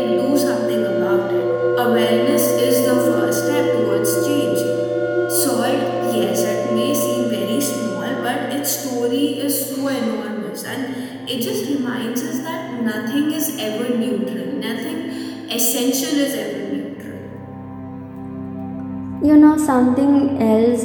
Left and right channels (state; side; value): identical; both; correlation 1.00